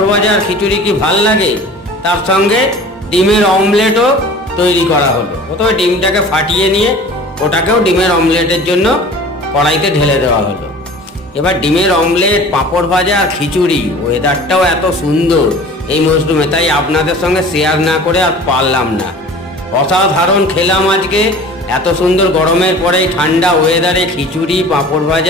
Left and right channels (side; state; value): both; normal; correlation 0.43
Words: ভাজা আর খিচুড়ি কি ভাল লাগে, তার সঙ্গে ডিমের অমলেটও তৈরি করা হলো। প্রথমে ডিমটাকে ফাটিয়ে নিয়ে ওটাকেও ডিমের অমলেটের জন্য কড়াইতে ঢেলে দেওয়া হলো। এবার ডিমের অমলেট, পাঁপড় ভাজা আর খিচুড়ি, ওয়েদারটাও এত সুন্দর এই মরশুমে, তাই আপনাদের সঙ্গে শেয়ার না করে আর পারলাম না। অসাধারণ খেলাম আজকে, এত সুন্দর গরমের পরে ঠান্ডা ওয়েদারে খিচুড়ি, পাঁপড়